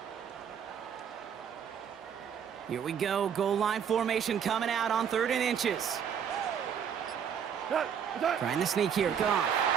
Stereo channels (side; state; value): left; quieter; 8.0 dB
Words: Here we go, goal line formation coming out on 3rd and inches. Trying to sneak here, Goff.